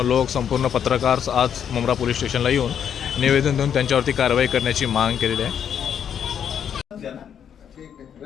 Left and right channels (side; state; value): right; quieter; 8.5 dB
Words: लोक संपूर्ण पत्रकार आज मुंब्रा पोलीस स्टेशनला येऊन निवेदन देऊन त्यांच्यावरती कारवाई करण्याची मागणी केलेली आहे.